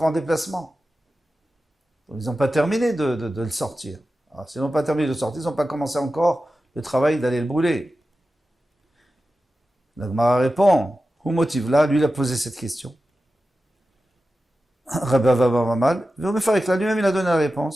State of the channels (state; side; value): normal; both; correlation 0.93